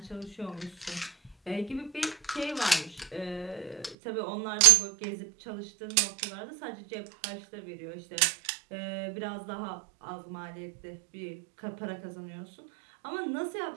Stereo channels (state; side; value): drops out; left; at 4.0 s